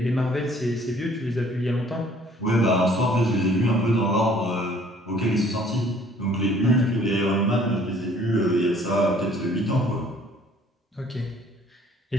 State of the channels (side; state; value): both; normal; correlation 0.57